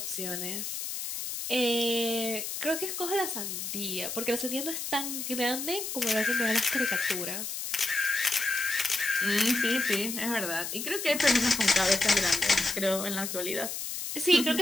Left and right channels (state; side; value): noise; left; hiss, 5 dB below the sound